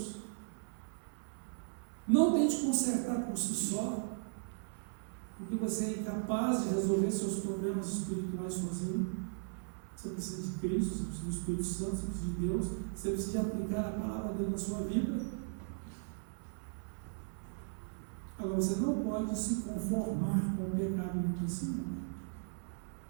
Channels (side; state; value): left; silent; 53 dB below the other